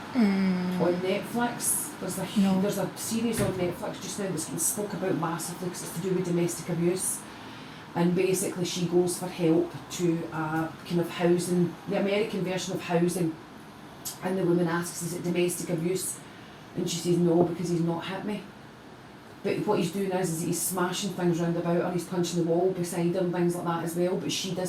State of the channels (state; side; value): identical; both; correlation 1.00